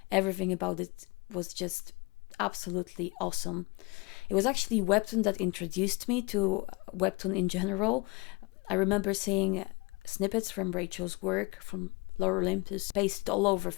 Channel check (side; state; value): right; quieter; 26.1 dB